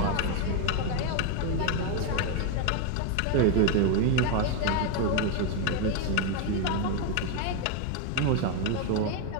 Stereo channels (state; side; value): different; both; correlation 0.02